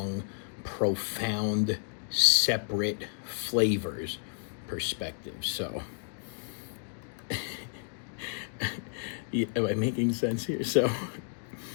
profound, separate flavors perspective. So am I making sense here? So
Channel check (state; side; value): silent; right; digital silence